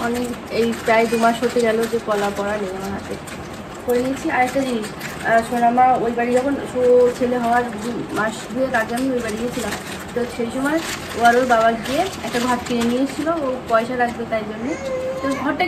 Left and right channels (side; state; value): both; identical; correlation 1.00